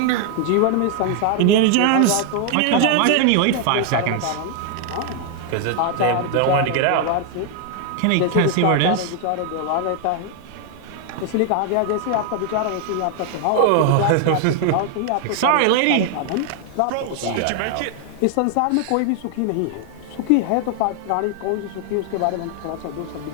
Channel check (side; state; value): both; different; correlation 0.00